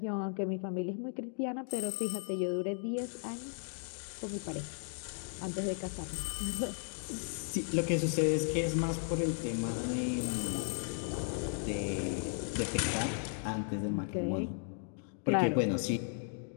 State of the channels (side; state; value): right; silent; 54 dB below the other